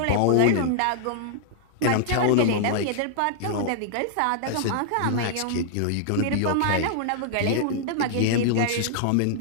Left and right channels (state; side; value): different; both; correlation -0.01